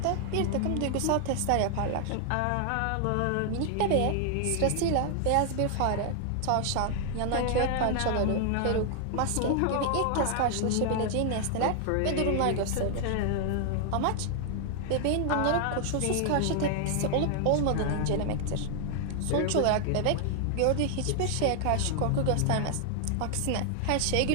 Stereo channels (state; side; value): different; both; correlation 0.00